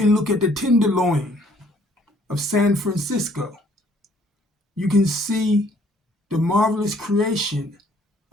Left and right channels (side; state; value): both; normal; correlation 0.61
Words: look at the Tenderloin of San Francisco. You can see the marvelous creation